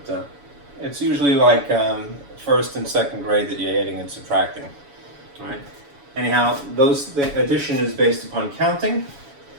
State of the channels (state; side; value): late; left; 7.1 ms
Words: it's usually like first and second grade that you're adding and subtracting. Right? Anyhow, the addition is based upon counting.